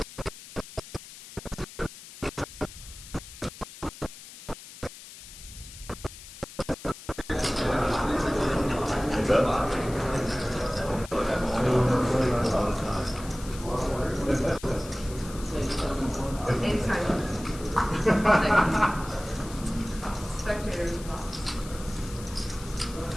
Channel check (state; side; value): noise; left; hiss, 16 dB below the sound